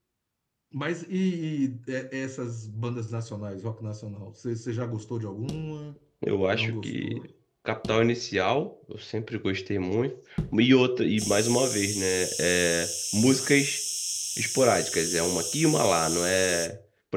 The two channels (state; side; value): identical; both; correlation 1.00